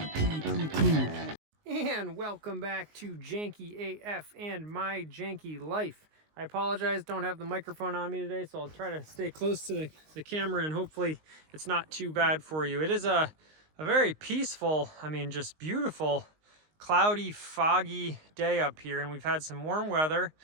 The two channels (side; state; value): left; late; 19 ms